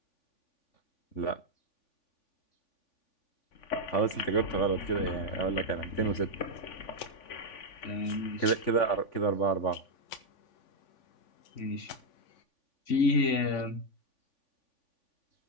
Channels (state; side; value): late; right; 3.5 ms